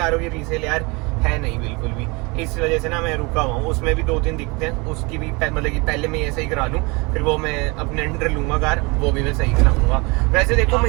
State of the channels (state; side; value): quieter; left; 27.2 dB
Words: की रीसेल यार है नहीं बिल्कुल भी। इस वजह से ना मैं रुका हुआ हूँ। उसमें भी 2-3 दिखते हैं, उसकी भी मतलब कि पहले मैं ये सही करा लूँ, फिर वो मैं अपने अंडर लूंगा कार, वो भी मैं सही कराऊंगा। वैसे देखो